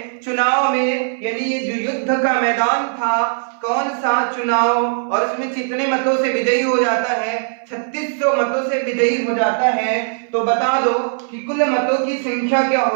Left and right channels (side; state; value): left; silent; 60 dB below the other